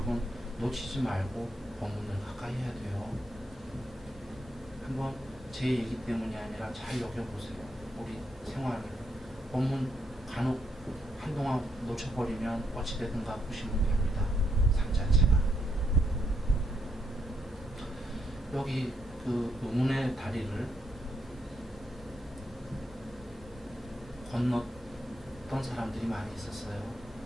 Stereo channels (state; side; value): normal; both; correlation 0.77